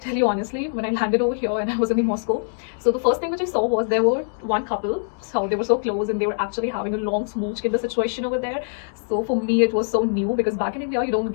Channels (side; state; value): right; silent; digital silence